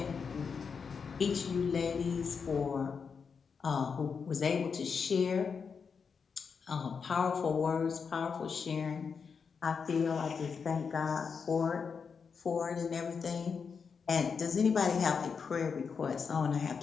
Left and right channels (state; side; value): quieter; right; 5.8 dB